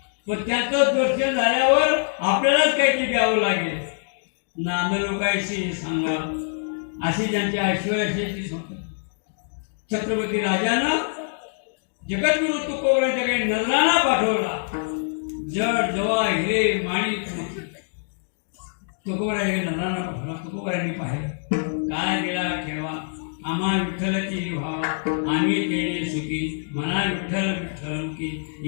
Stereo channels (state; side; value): silent; right; digital silence